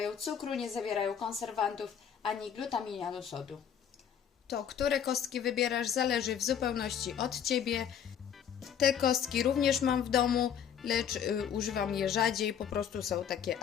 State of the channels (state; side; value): quieter; right; 8.5 dB